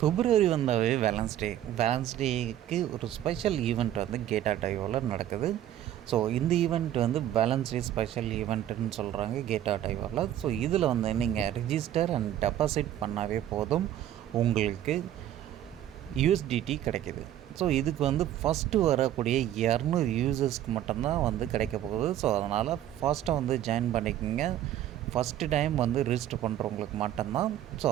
பிப்ரவரி வந்தாவே வேலன்ஸ் டேக்கு ஒரு special event வந்து கேட்டா டைவோவில் நடக்குது. ஸோ இந்த ஈவெண்ட் வந்து வேலன்ஸ் டே ஸ்பெஷல் ஈவெண்ட்டுன்னு சொல்கிறாங்க கேட்டா டைவோவில். ஸோ இதில் வந்து நீங்கள் ரிஜிஸ்டர் அண்ட் டெபாசிட் பண்ணாவே போதும், உங்களுக்கு யூஎஸ்டிடி கிடைக்கிது. ஸோ இதுக்கு வந்து ஃபஸ்ட்டு வரக்கூடிய 200 யூசர்ஸ்க்கு மட்டும்தான் வந்து கிடைக்க போகுது. ஸோ அதனால் ஃபாஸ்ட்டாக வந்து ஜாயின் பண்ணிக்கோங்க. ஃபஸ்ட்டு டைம் வந்து ரிஜிஸ்டர் பண்ணுறவங்களுக்கு மட்டும்தான். ஸோ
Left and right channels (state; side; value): quieter; left; 12.0 dB